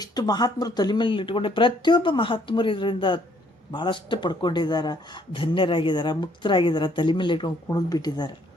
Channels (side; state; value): both; normal; correlation 0.65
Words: ಮಹಾತ್ಮರು ತಲೆ ಮೇಲೆ ಇಟ್ಕೊಂಡೆ? ಪ್ರತಿಯೊಬ್ಬ ಮಹಾತ್ಮರು ಇದರಿಂದ ಭಾಳಷ್ಟು ಪಡ್ಕೊಂಡಿದ್ದಾರೆ, ಧನ್ಯರಾಗಿದ್ದಾರೆ, ಮುಕ್ತರಾಗಿದ್ದಾರೆ, ತಲೆ ಮೇಲೆ ಇಟ್ಕೊಂಡು ಕುಣಿದು ಬಿಟ್ಟಿದ್ದಾರೆ.